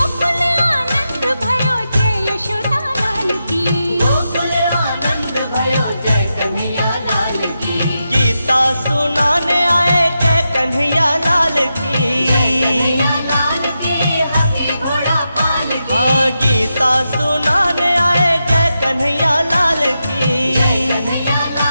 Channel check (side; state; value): both; inverted; correlation -0.88